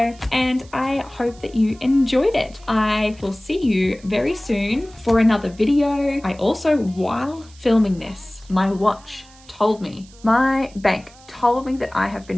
And I hope that you enjoyed it. I will see you very soon for another video. I also, while filming this, my watch told me, my bank told me that I have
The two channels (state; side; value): noise; right; hiss, 25 dB below the sound